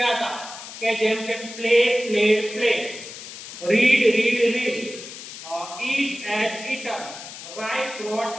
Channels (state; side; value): noise; left; hiss, 12 dB below the sound